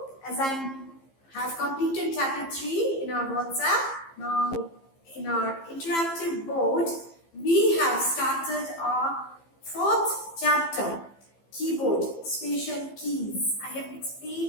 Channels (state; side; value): late; right; 15 ms